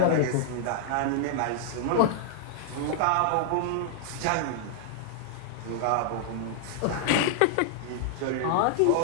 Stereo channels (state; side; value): different; both; correlation -0.01